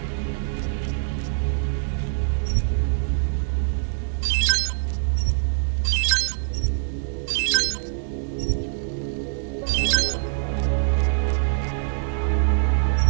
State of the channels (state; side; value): silent; left; 63 dB below the other